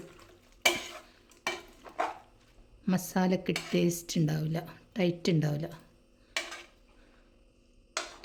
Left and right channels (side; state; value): both; identical; correlation 1.00